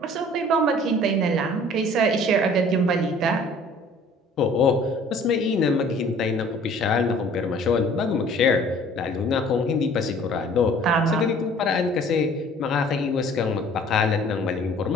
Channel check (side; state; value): both; normal; correlation 0.52